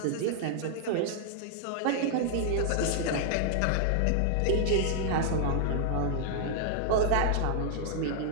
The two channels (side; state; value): both; different; correlation 0.00